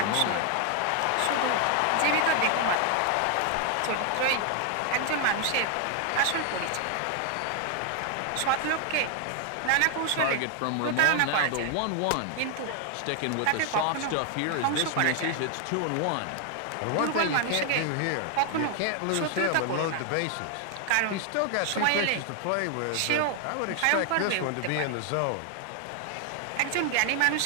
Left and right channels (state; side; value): different; both; correlation 0.00